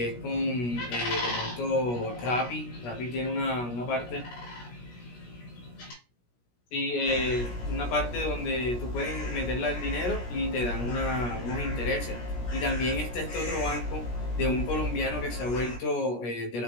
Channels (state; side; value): late; right; 17 ms